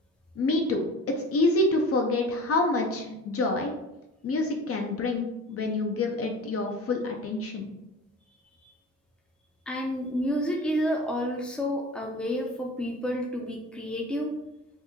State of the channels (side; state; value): both; normal; correlation 0.38